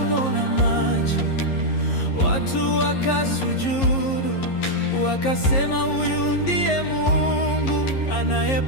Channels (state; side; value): late; right; 11 ms